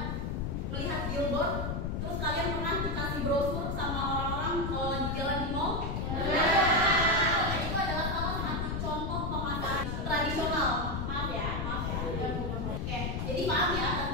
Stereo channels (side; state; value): left; noise; rumble, 2 dB below the sound